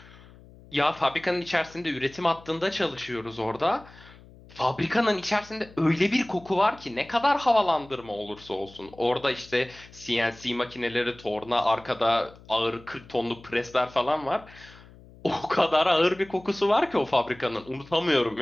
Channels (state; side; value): noise; left; hum, 22 dB below the sound